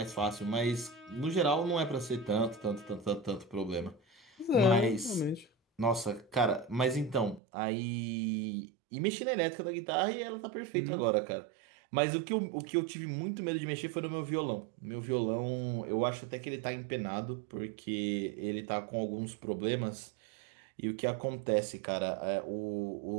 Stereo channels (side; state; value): left; drops out; at 7.4 s